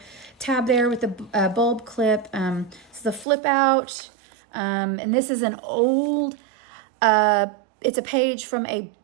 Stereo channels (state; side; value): drops out; left; at 3.2 s